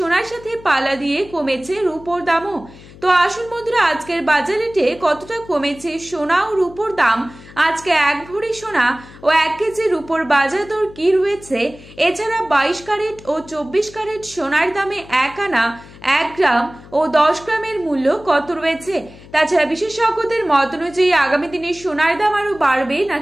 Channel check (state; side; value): noise; left; hum, 20 dB below the sound